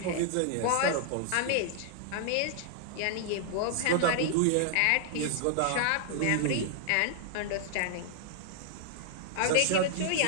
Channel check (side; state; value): both; different; correlation -0.01